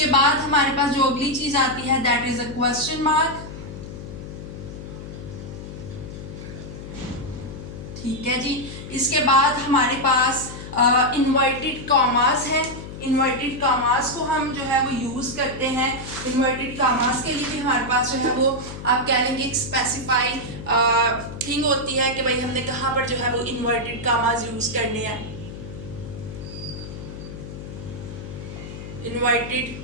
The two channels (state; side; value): noise; left; hum, 11 dB below the sound